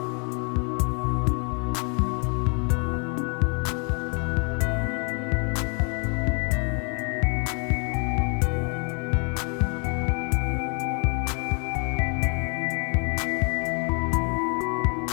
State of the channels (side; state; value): right; quieter; 36.6 dB